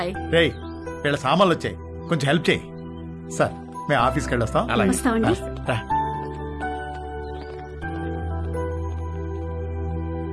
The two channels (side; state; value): both; identical; correlation 1.00